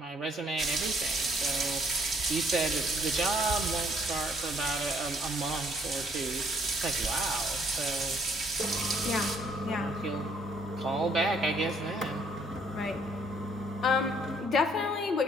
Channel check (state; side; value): normal; both; correlation 0.64